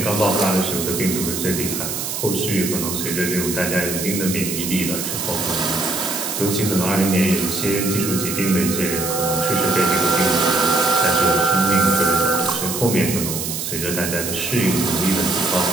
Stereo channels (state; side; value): noise; right; hiss, 4 dB below the sound